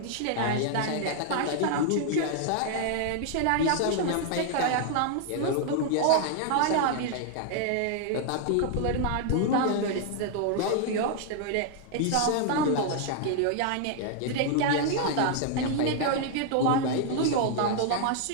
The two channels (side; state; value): both; different; correlation 0.00